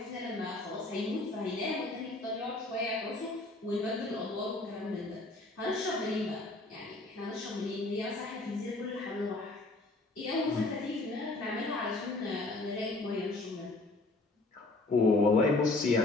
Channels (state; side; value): quieter; right; 3.0 dB